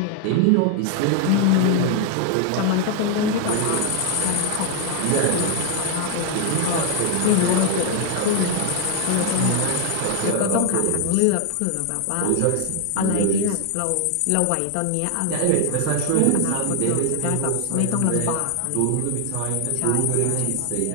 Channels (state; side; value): different; both; correlation 0.00